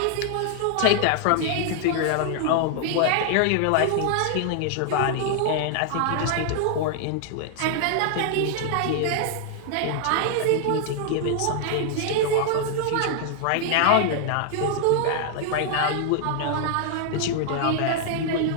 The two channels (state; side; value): different; both; correlation 0.00